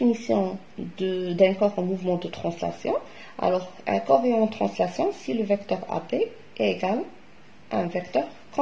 d'un corps en mouvement de translation. Alors, un corps est en translation si le vecteur AB est égal à un vecteur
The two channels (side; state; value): both; identical; correlation 1.00